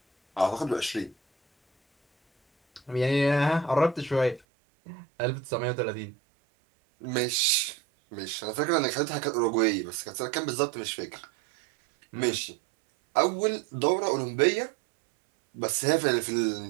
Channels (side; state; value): left; drops out; at 4.4 s